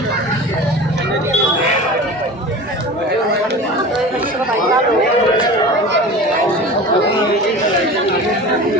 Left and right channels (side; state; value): both; normal; correlation 0.35